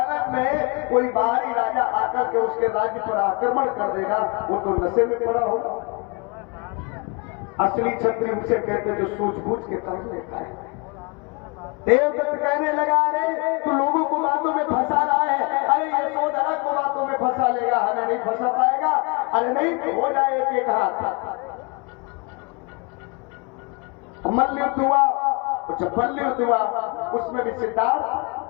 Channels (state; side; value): quieter; right; 30.6 dB